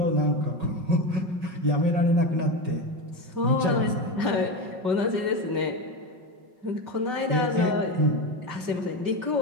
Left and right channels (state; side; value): late; left; 5.2 ms